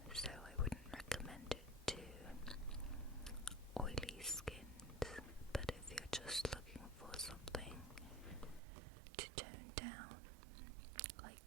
so I wouldn't recommend it to oily skins. But if you're just looking for something to tone down, like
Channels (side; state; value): left; drops out; at 8.6 s